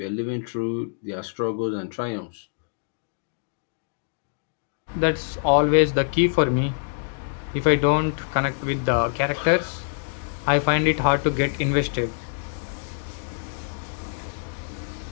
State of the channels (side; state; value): right; silent; digital silence